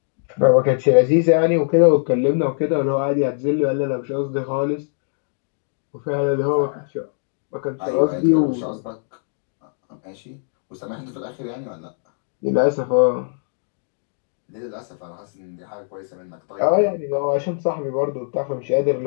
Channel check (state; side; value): silent; right; digital silence